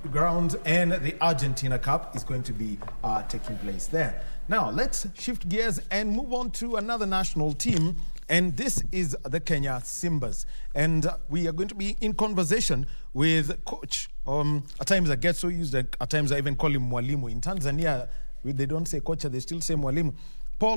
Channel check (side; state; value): both; inverted; correlation -1.00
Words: grounds, and the Argentina Cup is going to be taking place there. Now, let's shift gears and move on to another national team, and this is the Kenya Simbas. And we are going to be in conversation with coach. At times I get so used that at times I even call him Mwalimu. In Tanzania, they don't say coach, they still say Mwalimu.